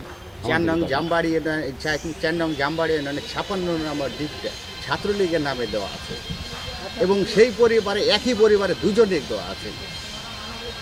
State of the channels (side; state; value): both; identical; correlation 1.00